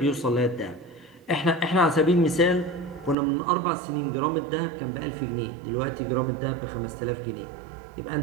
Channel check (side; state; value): left; drops out; at 3.2 s